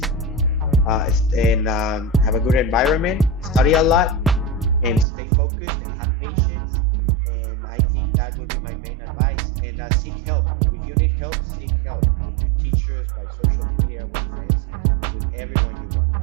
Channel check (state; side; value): drops out; left; at 5.1 s